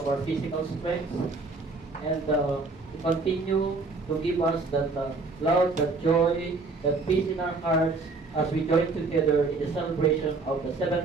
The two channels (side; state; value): left; quieter; 3.8 dB